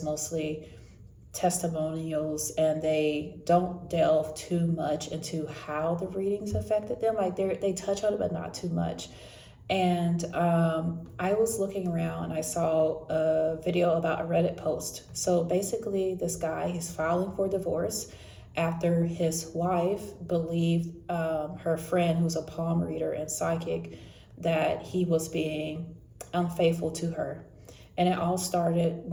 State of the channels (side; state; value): both; identical; correlation 1.00